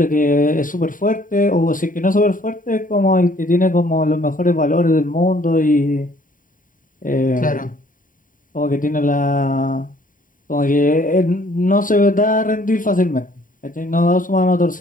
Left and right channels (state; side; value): late; right; 0.39 ms